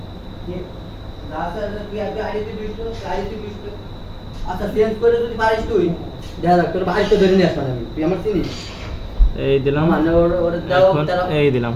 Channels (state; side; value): identical; both; correlation 1.00